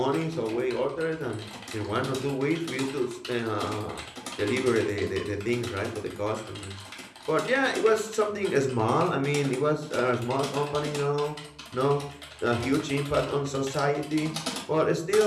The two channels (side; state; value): both; identical; correlation 1.00